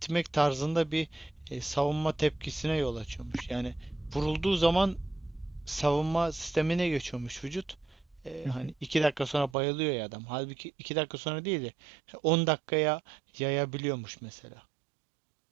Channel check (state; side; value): drops out; left; at 9.6 s